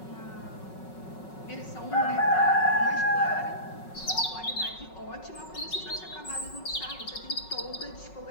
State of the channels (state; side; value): late; right; 5.4 ms